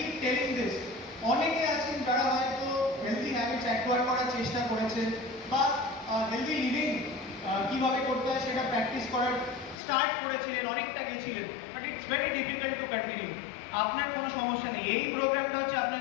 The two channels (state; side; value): drops out; right; at 9.8 s